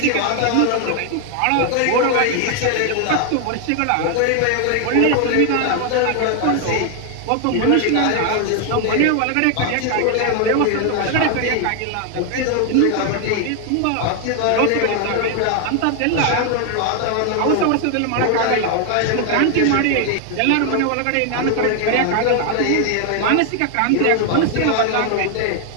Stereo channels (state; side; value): different; both; correlation 0.00